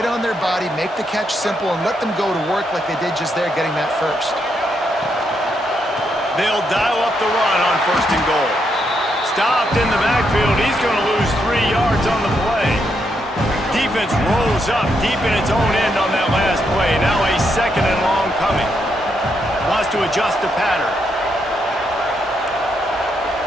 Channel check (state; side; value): normal; both; correlation 0.79